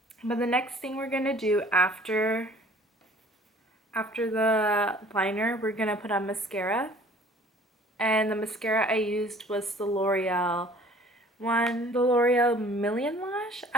the next thing we're gonna do after the liner, we're gonna put on mascara. And the mascara I used was the L'Oreal one, the L'Oreal Million Lash.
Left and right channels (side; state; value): both; normal; correlation 0.52